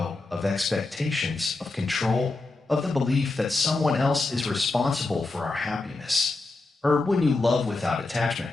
of expectations, of control, of the belief that someone else is responsible for our happiness. Or when you love without attachment,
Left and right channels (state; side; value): quieter; right; 3.3 dB